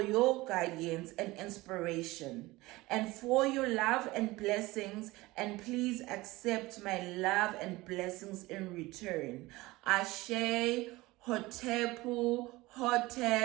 your guidance and inspiration, and for your love and blessings, and please accept my love and blessings in return. Ashe, Hotepu,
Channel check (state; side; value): quieter; left; 20.2 dB